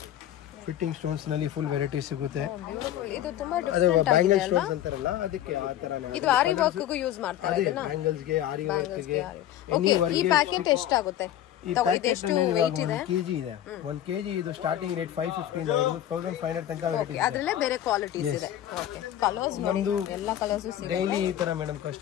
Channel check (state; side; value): quieter; right; 11.9 dB